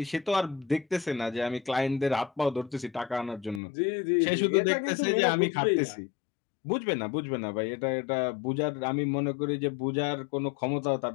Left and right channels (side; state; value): right; drops out; at 3.6 s